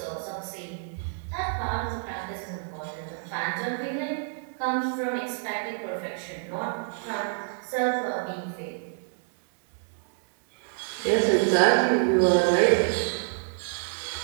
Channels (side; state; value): left; silent; digital silence